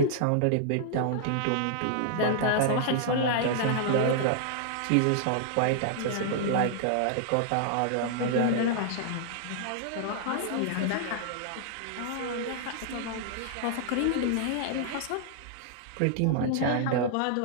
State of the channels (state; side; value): different; both; correlation -0.01